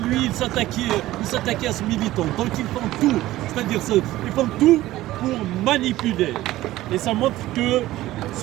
il s'attaquait à ce militant. Donc ils font tout, c'est-à-dire ils font tout pour manipuler. Et ça montre que ce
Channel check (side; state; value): left; quieter; 16.1 dB